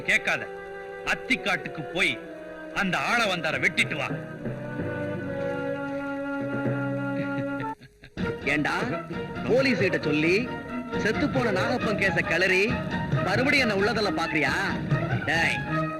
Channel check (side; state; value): both; identical; correlation 1.00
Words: கேட்காத, அத்திக்காட்டுக்கு போய் அந்த ஆள வந்தார வெட்டிட்டு வா. ஏண்டா, போலீஸ் கிட்ட சொல்லி செத்து போன நாகப்பன் கேச கிளறி மறுபடியும் என்ன உள்ளதல்ல பாக்குறியா? டேய்,